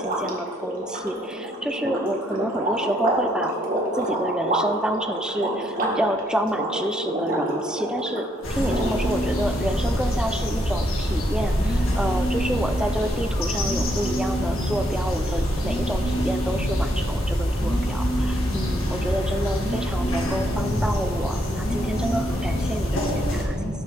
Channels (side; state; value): both; normal; correlation 0.73